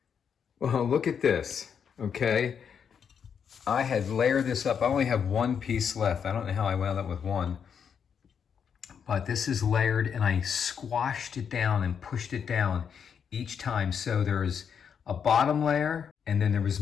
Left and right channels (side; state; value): right; quieter; 7.3 dB